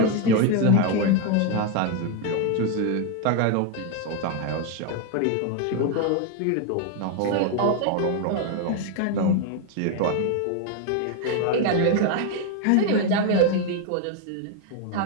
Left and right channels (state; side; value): different; both; correlation 0.01